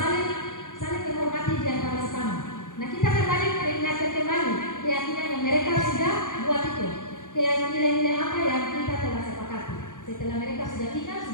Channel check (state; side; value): late; right; 0.87 ms